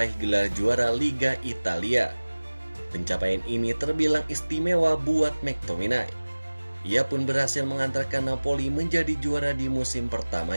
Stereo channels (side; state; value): both; inverted; correlation -1.00